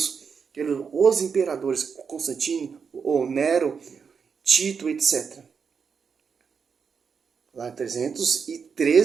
os imperadores, Constantino, ou Nero, Tito, etc. Lá em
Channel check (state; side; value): quieter; left; 6.1 dB